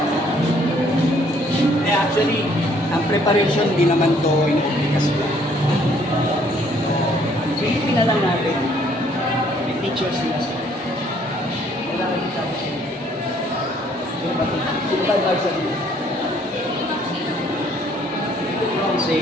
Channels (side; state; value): both; normal; correlation 0.63